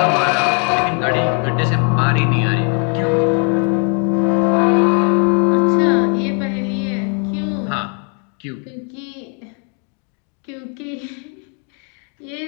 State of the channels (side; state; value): right; quieter; 39.6 dB